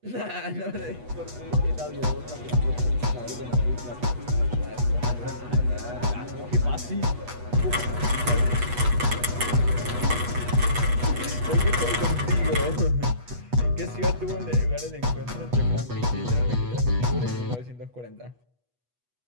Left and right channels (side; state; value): left; late; 8.2 ms